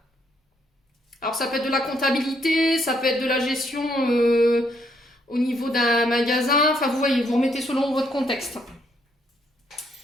Alors, ça peut être de la comptabilité, ça peut être de la gestion au niveau d'un magasin. Enfin, vous voyez, vous remettez selon votre contexte.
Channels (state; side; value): normal; both; correlation 0.72